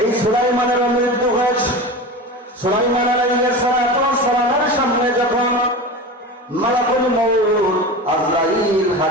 এই সুলাইমানের মৃত্যু হয়েছে। সুলাইমান আলাইহিস সালামের সামনে যখন মালাকুল মউত আজরাইল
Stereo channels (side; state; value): both; normal; correlation 0.29